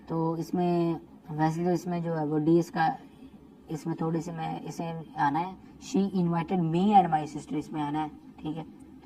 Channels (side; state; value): both; identical; correlation 1.00